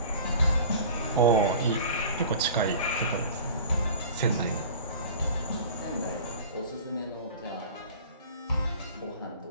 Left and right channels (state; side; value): inverted; both; correlation -0.41